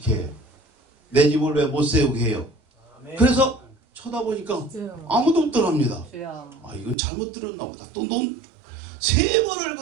해? 내 집을 왜 못 세우게 해요? 그래서 쳐다보니까 아무도 없더랍니다. 아 이건 잘못 들었나 보다. 또 논 3번을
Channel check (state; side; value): drops out; left; at 7.0 s